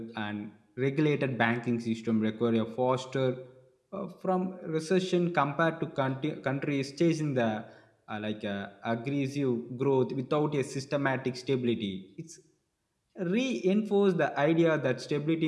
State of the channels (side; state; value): both; identical; correlation 1.00